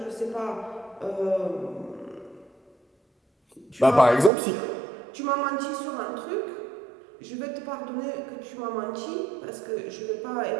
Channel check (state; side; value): drops out; left; at 4.3 s